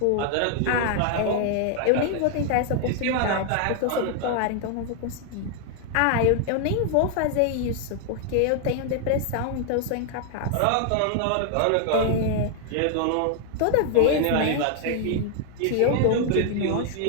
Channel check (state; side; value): different; both; correlation 0.00